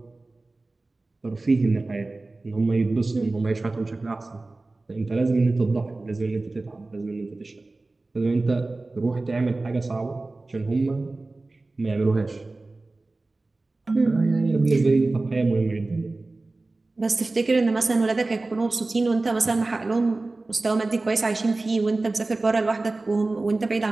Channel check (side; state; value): left; quieter; 3.2 dB